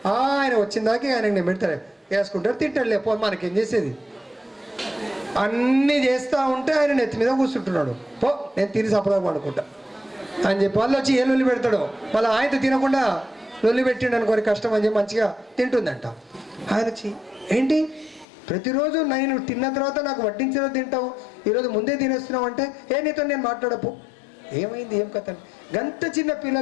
ఆయన వచ్చిందాకే ఆయనకి నేను పెడతాడు, వేసుకుంటాడు, తింటాడు. లేకపోతే మనకేం చేసేది? అన్నీ చేస్తూ ఉంటే ఆయన నెత్తి మీద కూర్చుంటున్నాడు. పో నేను తిని సపదా పడుకుంటా అని చెప్పి వాళ్ళు వచ్చి ఏ లొల్లి పెడతాడు. మళ్ళీ ఆయనతో తినకుండా లొల్లి పెట్టిండు అనుకోని కష్టం అని చెప్పి మంచిగా తింటుందంట. ఆయన వచ్చి ఏంటి ప్రతిరోజు నేను తిన్న తర్వాత నాకు వడ్డించిన తింటావు, ఈరోజు ముందే తినేస్తున్నావు అంటే నీతో నేను మాట్లాడపు. ఏమైంది ఏం కథ? గంత చిన్న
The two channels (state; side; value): drops out; right; at 18.2 s